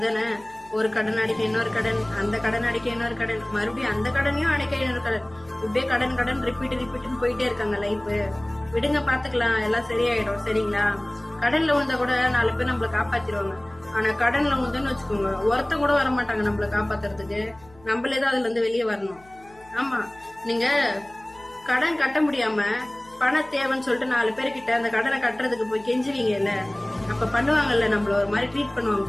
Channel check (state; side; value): noise; left; hum, 26 dB below the sound